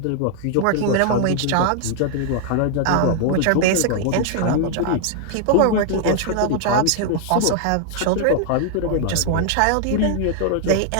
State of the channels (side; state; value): both; different; correlation 0.00